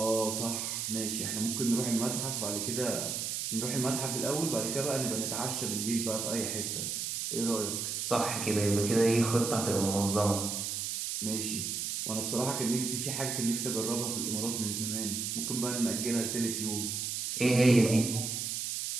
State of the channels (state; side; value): noise; right; hiss, 2 dB below the sound